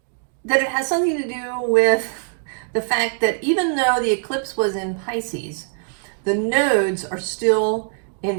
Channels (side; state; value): left; silent; 57 dB below the other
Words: that it has something to do with the fact that even though the eclipse was in Pisces, the nodes are still